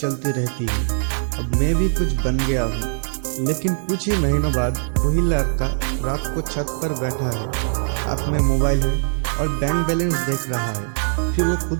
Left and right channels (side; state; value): left; silent; digital silence